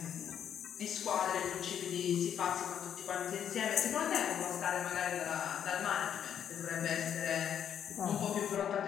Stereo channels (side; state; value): right; quieter; 9.1 dB